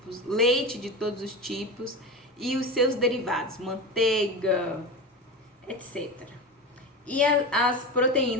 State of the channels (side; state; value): both; normal; correlation 0.23